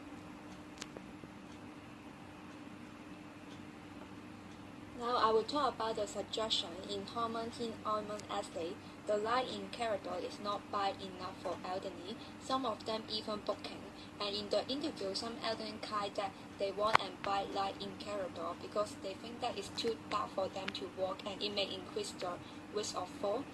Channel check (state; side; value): identical; both; correlation 1.00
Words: Now I will talk about the suggestion in Hormontin Oilment Estate. The light in corridor is not bright enough for elderly, some of them even booking. And in the interview, some elderly claim that they want a bright light in corridor because they think that it's too dark for them to walk and it may increase the risk of fall.